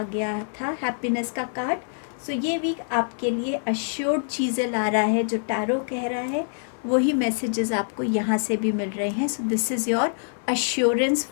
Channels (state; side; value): silent; right; 62 dB below the other